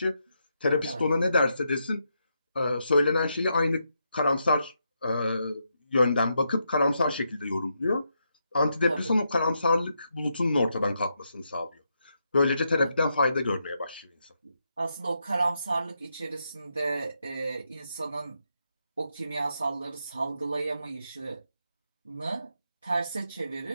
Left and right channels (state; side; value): inverted; both; correlation -0.82